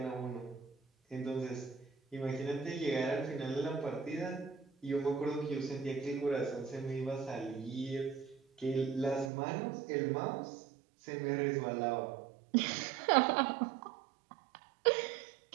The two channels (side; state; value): left; drops out; at 9.3 s